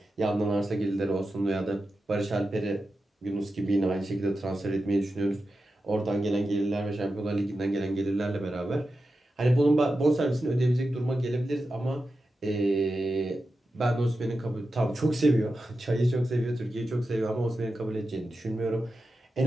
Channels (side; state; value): both; normal; correlation 0.91